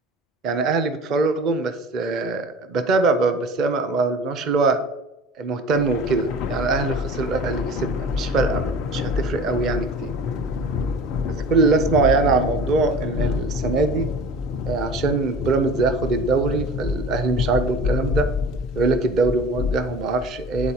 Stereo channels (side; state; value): both; normal; correlation 0.40